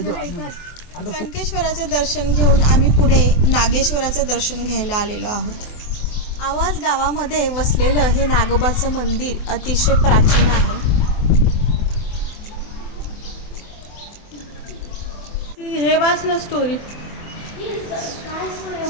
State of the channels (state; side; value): late; right; 24 ms